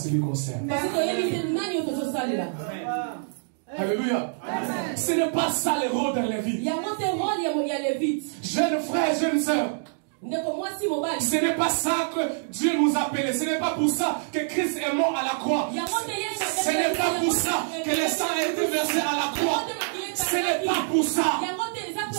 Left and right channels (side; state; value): left; silent; digital silence